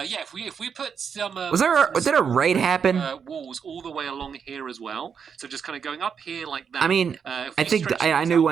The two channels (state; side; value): quieter; left; 6.8 dB